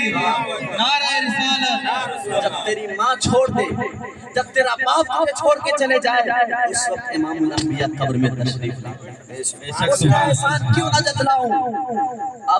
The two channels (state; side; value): identical; both; correlation 1.00